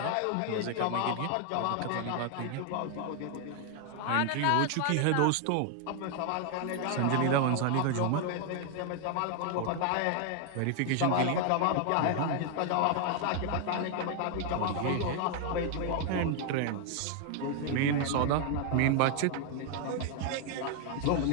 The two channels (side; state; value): both; different; correlation 0.00